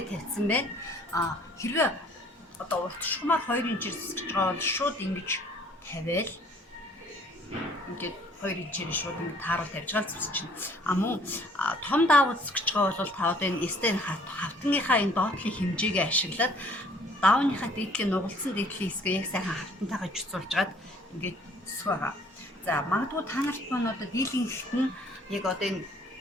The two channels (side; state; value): both; normal; correlation 0.57